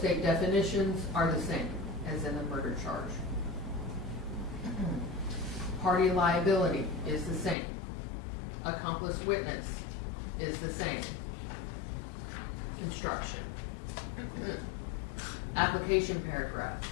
definitions are the same as in the murder charge. Party liability is the same. Accomplice witness is the same. Construction. Application paragraph.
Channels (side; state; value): right; drops out; at 7.6 s